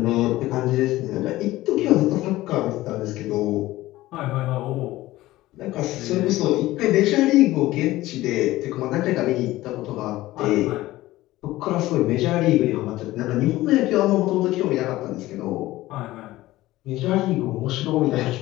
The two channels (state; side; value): quieter; right; 17.0 dB